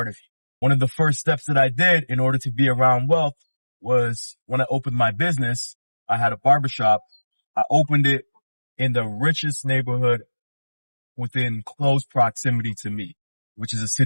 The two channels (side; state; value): both; inverted; correlation -1.00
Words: of you. One of the first steps that I did in order to be around wealth was when I opened my business. I had a barbershop. I opened it in the richest neighborhood within close proximity to me, which is a